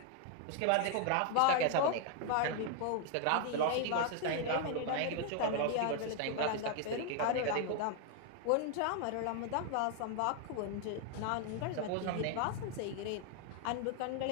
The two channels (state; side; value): different; both; correlation 0.00